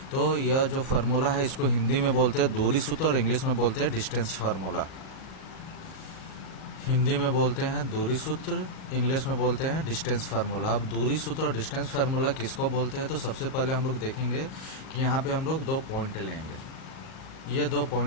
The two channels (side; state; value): right; late; 38 ms